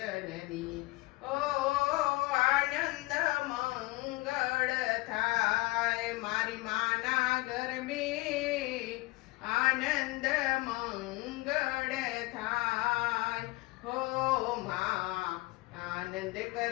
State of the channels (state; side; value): quieter; right; 22.4 dB